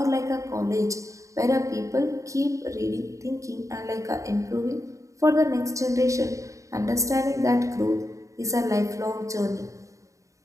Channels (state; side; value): late; left; 0.15 ms